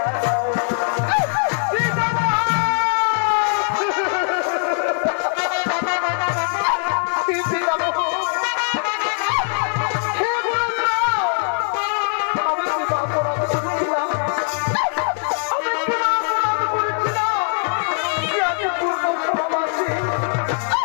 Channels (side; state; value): right; silent; 56 dB below the other